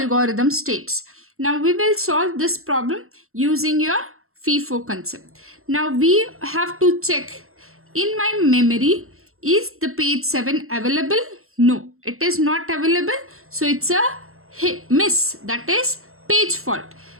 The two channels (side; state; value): left; late; 0.62 ms